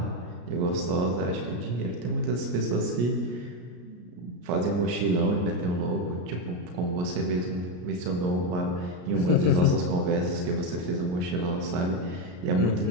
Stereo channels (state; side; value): late; left; 34 ms